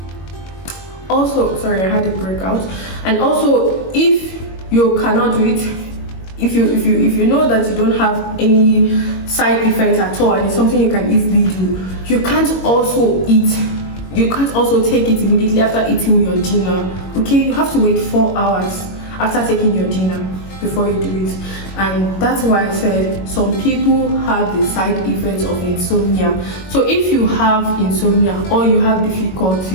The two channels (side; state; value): right; late; 22 ms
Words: also, sorry, I had a breakout. And also, if you cannot do it, if you know that you don't have any side effects at all and it's something you can easily do, you can't also take it immediately after eating your dinner, okay? You have to wait 4 hours after taking your dinner. before you do it. And that's why I said some people have the side effects of insomnia. So if you have insomnia or you have